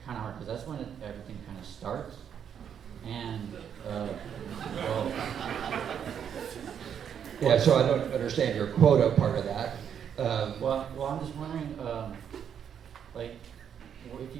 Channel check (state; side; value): quieter; left; 8.3 dB